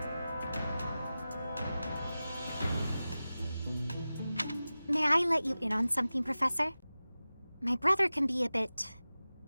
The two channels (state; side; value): inverted; both; correlation -0.96